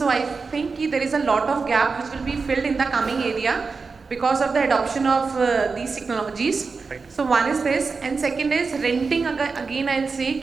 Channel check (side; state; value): left; quieter; 4.6 dB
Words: I think there is a lot of gap which will be filled in the coming area because of the adoption of these technologies. Right. So one is this, and second is renting. Again, I'll say